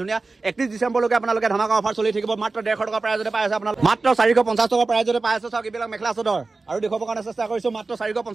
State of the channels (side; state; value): left; quieter; 3.7 dB